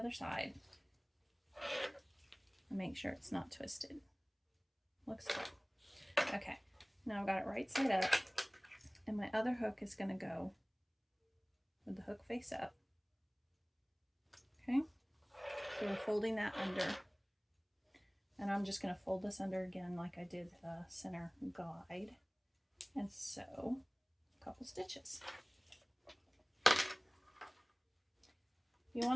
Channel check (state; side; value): identical; both; correlation 1.00